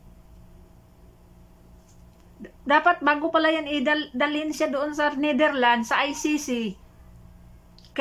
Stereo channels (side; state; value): both; identical; correlation 1.00